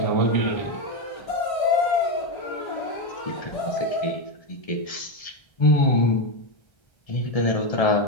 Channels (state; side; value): late; right; 1.3 ms